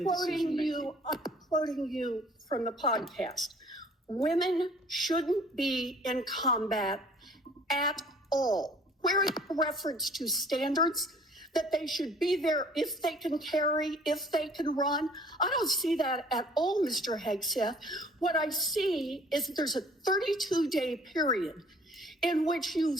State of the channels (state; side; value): normal; both; correlation 0.54